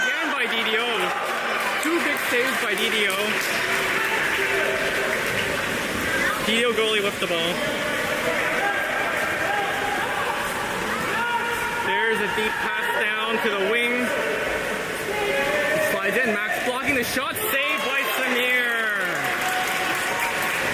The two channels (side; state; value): both; identical; correlation 1.00